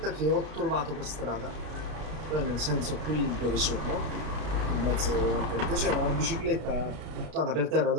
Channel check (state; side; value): late; left; 33 ms